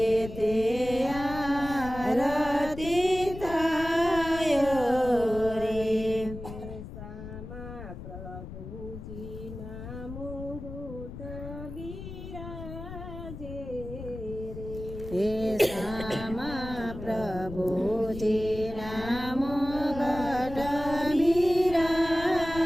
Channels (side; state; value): left; noise; rumble, 11 dB below the sound